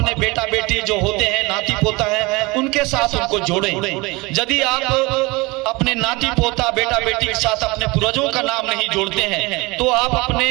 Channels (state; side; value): quieter; left; 24.3 dB